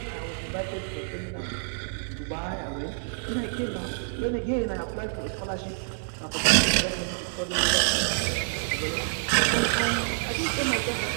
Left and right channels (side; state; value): left; silent; digital silence